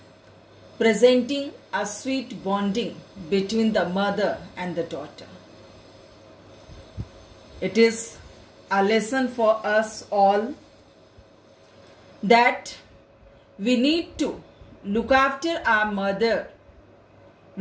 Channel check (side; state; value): both; identical; correlation 1.00